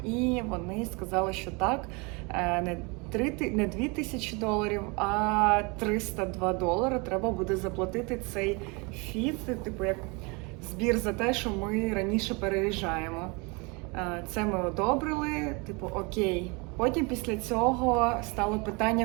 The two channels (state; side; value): quieter; left; 29.3 dB